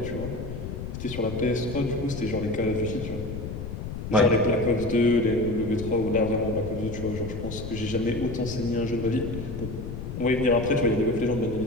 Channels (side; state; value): left; noise; rumble, 7 dB below the sound